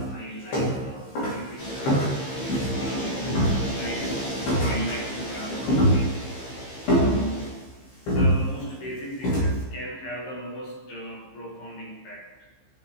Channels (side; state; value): right; late; 15 ms